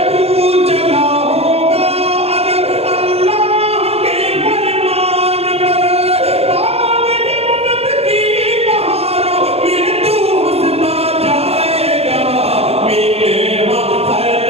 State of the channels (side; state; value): left; late; 0.29 ms